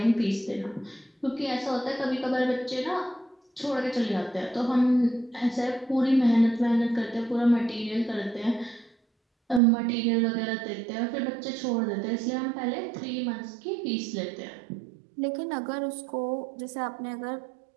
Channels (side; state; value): left; drops out; at 9.6 s